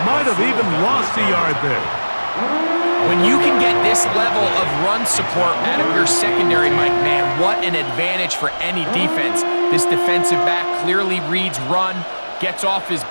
Might have even lost a yard there. When you can get this level of run support out of your secondary, Mike, man, what an advantage for any defense. This defensive back clearly reads run, gets off his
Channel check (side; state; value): both; inverted; correlation -1.00